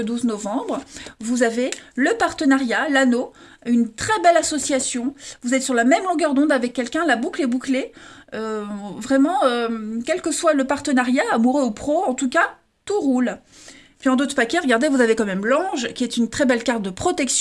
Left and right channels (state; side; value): identical; both; correlation 1.00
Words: novembre, vous avez le partenariat, l'anneau, une très belle association. Vous êtes sur la même longueur d'onde avec quelqu'un, la boucle est bouclée. Vraiment, quel que soit le partenariat, amoureux ou pro, en tout cas, tout roule. Puis en d'autres paquets, regardez, vous avez quand même l'ange, qui est une très belle carte de